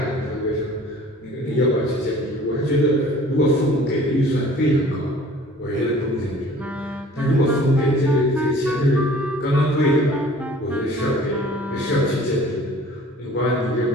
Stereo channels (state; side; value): normal; both; correlation 0.49